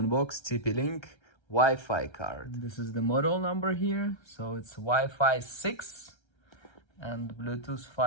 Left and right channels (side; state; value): right; late; 1.3 ms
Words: TP-Link Wi-Fi card. This is the model number here, so it's Wi-Fi 6 and Bluetooth